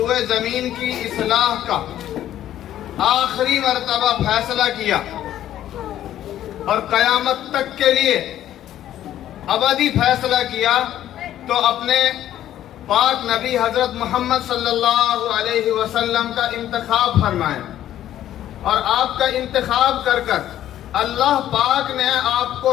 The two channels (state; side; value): quieter; right; 12.1 dB